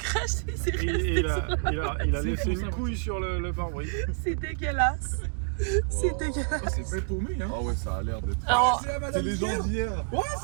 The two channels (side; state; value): left; silent; digital silence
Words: c'est resté. Il a laissé une couille sur le pare-brise. C'est dégueulasse. C'est dégueulasse. Oh, c'est bien paumé, hein? Ah ouais, ça a l'air d'être. Alors, C'est les gens d'hier. Ouais,